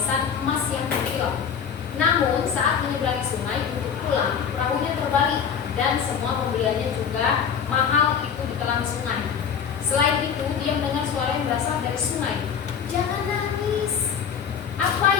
emas yang berkilau. Namun saat menyeberangi sungai untuk pulang, perahunya terbalik dan semua pembeliannya juga mahal itu ditelan sungai. Selain itu, dia mendengar suara yang berasal dari sungai. "Jangan nangis. Apa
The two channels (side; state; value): right; quieter; 7.3 dB